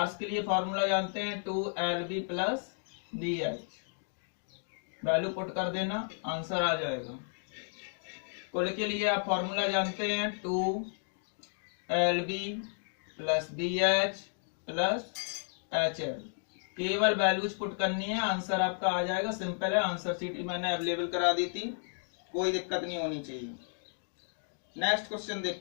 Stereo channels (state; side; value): silent; right; digital silence